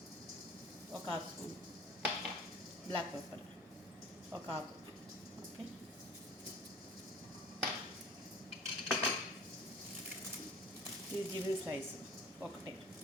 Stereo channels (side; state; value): both; normal; correlation 0.45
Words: ఒక హాఫ్ స్పూన్ బ్లాక్ పెప్పర్, ఒక ఆకు. ఓకే, ఇది జిబిన్ స్లైస్ ఒకటే.